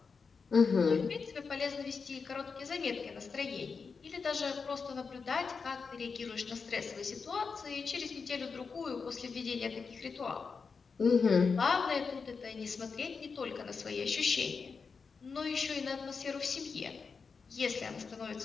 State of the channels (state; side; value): quieter; right; 5.1 dB